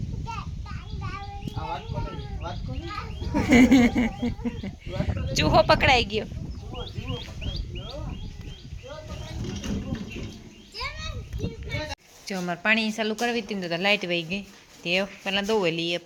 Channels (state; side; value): identical; both; correlation 1.00